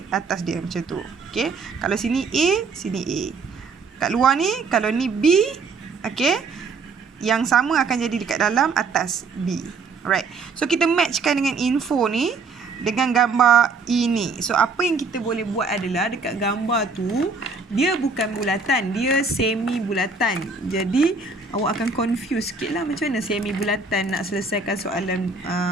Atas dia macam tu. Okey, kalau sini A, sini A. Kat luar ni, kalau ni B, okey, yang sama akan jadi dekat dalam atas B. Alright. So kita matchkan dengan info ni dengan gambar ini. So apa yang kita boleh buat adalah dekat gambar tu dia bukan bulatan, dia semi bulatan. Jadi awak akan confuse sikit lah macam mana semi bulatan nak selesaikan soalan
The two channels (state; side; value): quieter; left; 4.3 dB